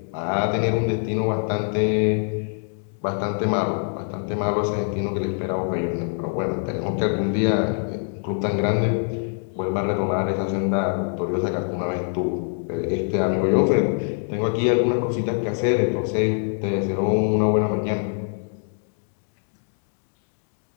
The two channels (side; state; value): right; silent; 57 dB below the other